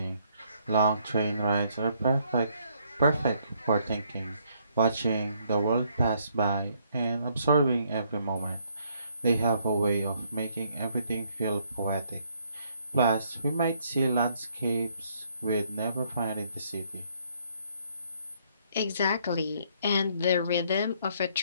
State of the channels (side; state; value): both; inverted; correlation -0.68